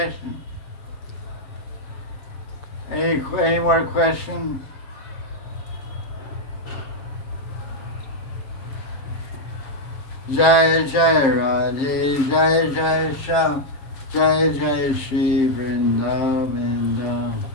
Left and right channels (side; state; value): right; late; 7.5 ms